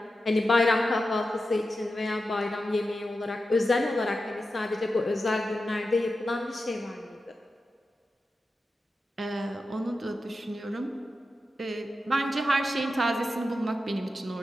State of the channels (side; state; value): both; normal; correlation 0.91